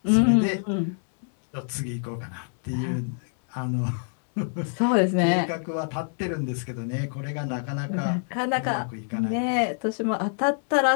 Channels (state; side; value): silent; right; digital silence